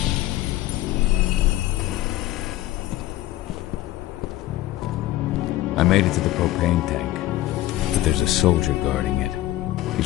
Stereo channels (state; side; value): quieter; right; 15.7 dB